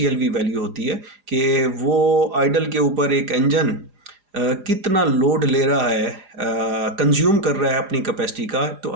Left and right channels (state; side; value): late; left; 4.9 ms